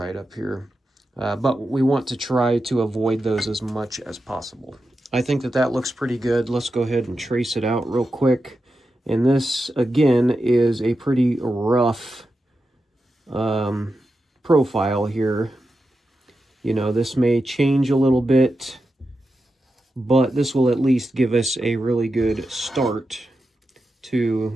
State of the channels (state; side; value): normal; both; correlation 0.89